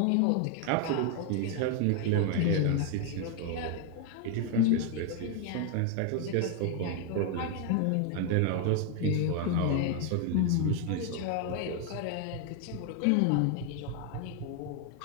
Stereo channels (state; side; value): different; both; correlation 0.01